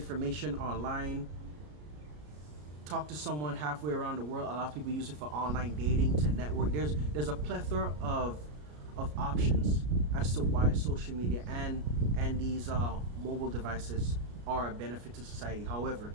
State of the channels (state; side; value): late; left; 33 ms